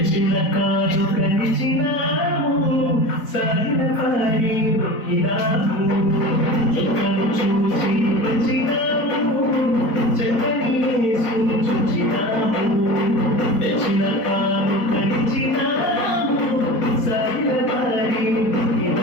కాదు కలిచినాము, సాగిన పారి మొక్కినాము, చుక్కను చూసి వచ్చినాము, చక్కని యేసుని చూచినాము, తెచ్చిన కాదు కలిచినాము, సాగిన పారి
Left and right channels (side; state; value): right; late; 4.6 ms